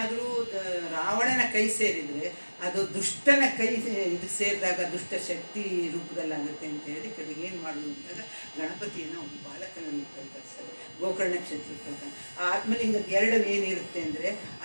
ರಾವಣನ ಕೈ ಸೇರಿದರೆ ಅದು ದುಷ್ಟನ ಕೈ ಇದು ಸೇರಿದಾಗ ದುಷ್ಟ ಶಕ್ತಿ ರೂಪದಲ್ಲಾಗುತ್ತೆ ಅಂತ ಹೇಳಿ ಕಡೆಗೆ ಏನು ಮಾಡೋದು ಅಂದಾಗ ಗಣಪತಿಯನ್ನು ಒಂದು ಬಾಲಕನ ರೂಪದಲ್ಲಿ ಕಳಿಸ್ತಾರೆ. ಗೋಕರ್ಣ ಕ್ಷೇತ್ರಕ್ಕೆ ಬರ್ತಾನೆ. ಆ ಆತ್ಮಲಿಂಗದ ಎರಡು ಏನಿರುತ್ತೆ ಅಂದರೆ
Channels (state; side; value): inverted; both; correlation -1.00